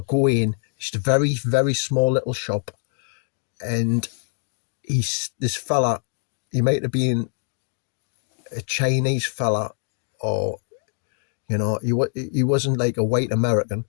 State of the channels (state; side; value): silent; right; 61 dB below the other